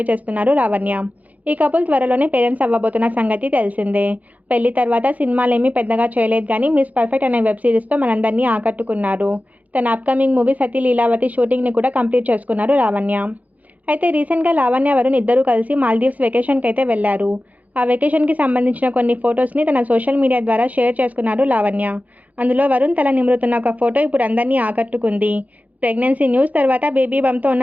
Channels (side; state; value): left; late; 0.076 ms